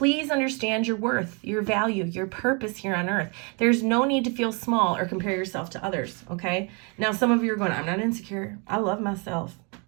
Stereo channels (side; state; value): left; quieter; 33.7 dB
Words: understand your worth, your value, your purpose here on earth. There's no need to feel small or compare yourself to others, okay? Now, some of you are going, I'm not insecure. I love myself.